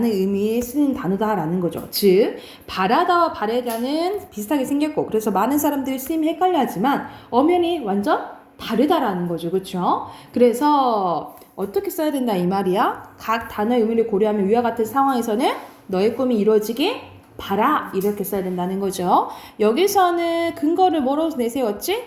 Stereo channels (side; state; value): both; identical; correlation 1.00